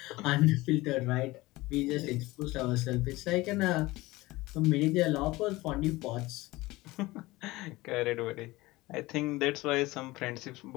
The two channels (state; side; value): quieter; right; 20.0 dB